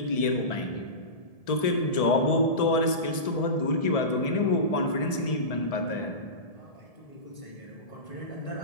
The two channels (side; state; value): right; late; 1.7 ms